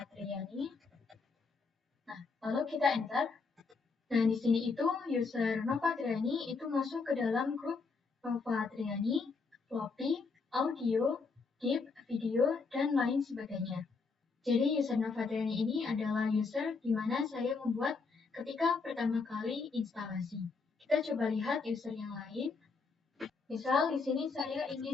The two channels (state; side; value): quieter; right; 4.5 dB